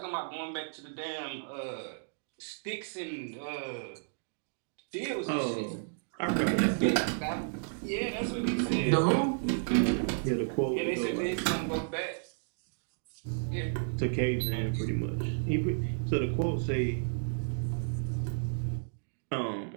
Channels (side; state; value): left; silent; digital silence